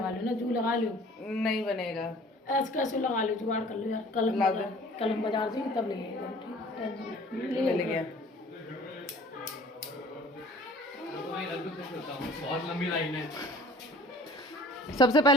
लो ना, जू लगा लो, नहीं बनेगा, ऐसे लगा लो, जुगाड़ कर लो यार। कल हम बाजार जाएंगे तब ले गया। बहुत लंबी लाइन है। सबसे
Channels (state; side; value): normal; both; correlation 0.49